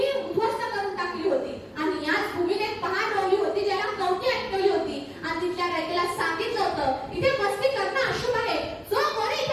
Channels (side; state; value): both; identical; correlation 1.00